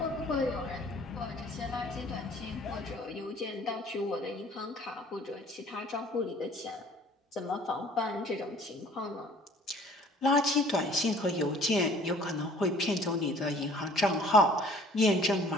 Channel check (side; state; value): both; normal; correlation 0.53